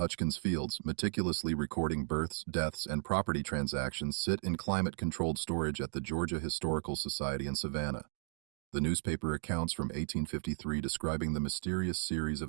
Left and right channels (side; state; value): left; silent; digital silence